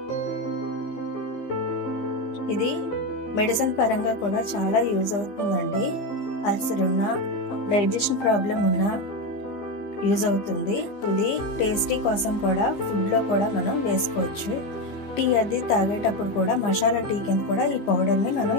ఇది మెడిసిన్ పరంగా కూడా చాలా యూజ్ అవుతుందండి. అల్సర్ ఉన్నా, డైజెషన్ ప్రాబ్లం ఉన్నా యూజ్ అవుతుంది. ఇది టేస్టీ కోసం కూడా ఫుడ్లో కూడా మనం వేసుకోవచ్చు. టీ అది తాగేటప్పుడు కూడా మసాలా టీ కింద కూడా ఈ పౌడర్ని మనం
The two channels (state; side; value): late; right; 15 ms